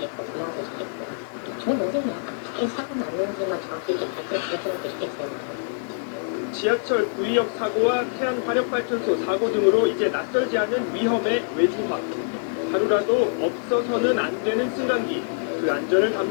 부모한테 잘했고 좋은 동생이야. 이 사고 났는지만 정확히 이렇게 밝혀주셨으면 좋겠어요. 지하철 구의역 사고와 태안 화력발전소 사고 등으로 이제 낯설지 않은 위험의 외주화. 하루라도 없어서는 안 되는 승강기. 그 안전을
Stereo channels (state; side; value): silent; right; 62 dB below the other